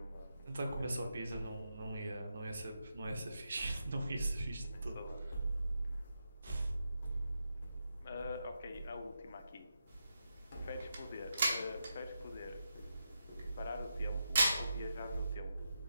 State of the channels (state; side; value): inverted; both; correlation -0.86